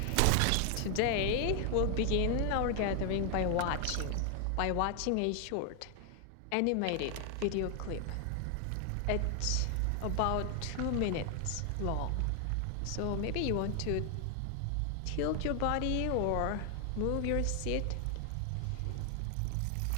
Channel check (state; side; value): different; both; correlation 0.00